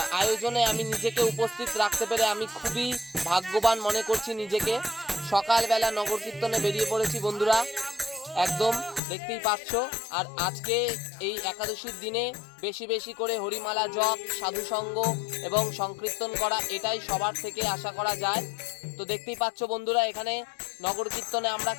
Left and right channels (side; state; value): right; drops out; at 9.0 s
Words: আয়োজনে আমি নিজেকে উপস্থিত রাখতে পেরে আমি খুবই ভাগ্যবান মনে করছি নিজেকে। সকালবেলা নগর কীর্তনে বেরিয়ে পড়েছি বন্ধুরা, একদম দেখতেই পাচ্ছ। আর আজকে এই একাদশীর দিনে বেশি বেশি করে হরিমালা জপ, সাধুসঙ্গ এবং সংকীর্তন করা, এটাই সবার থেকে আশা করা যায়। তো দেখতেই পাচ্ছ বন্ধুরা, এখানে নগর কীর্তনে আমরা